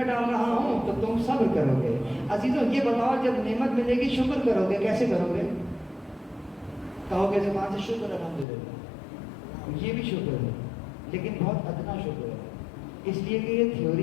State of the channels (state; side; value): drops out; right; at 8.5 s